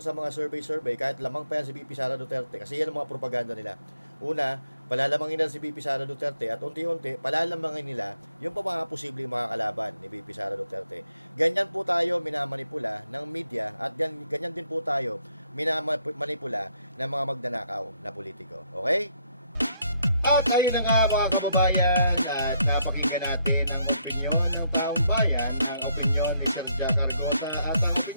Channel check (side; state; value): both; inverted; correlation -0.73